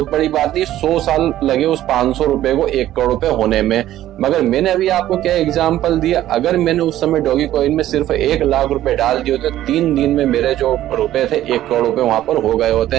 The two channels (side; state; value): left; quieter; 13.4 dB